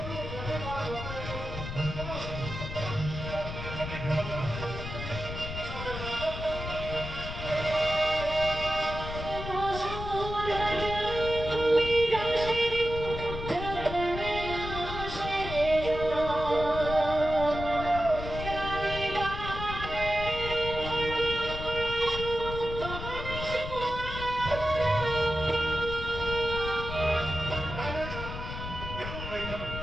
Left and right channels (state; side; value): noise; left; rumble, 7 dB below the sound